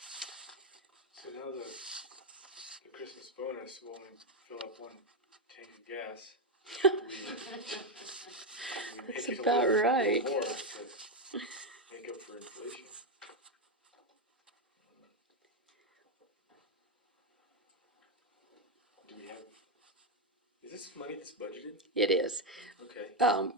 So now the Christmas bonus will only fill up one tank of gas. We That's make it a about little right. more to make up for inflation. Do we have, is this money that's budgeted? It is. Okay.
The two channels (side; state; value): both; normal; correlation 0.05